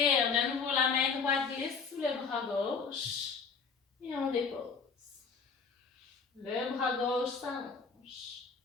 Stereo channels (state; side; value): quieter; right; 5.4 dB